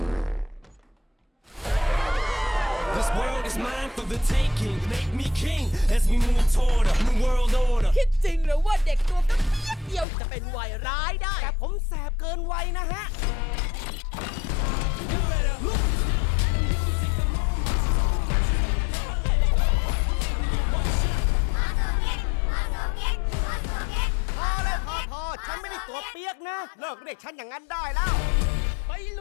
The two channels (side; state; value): right; drops out; at 10.1 s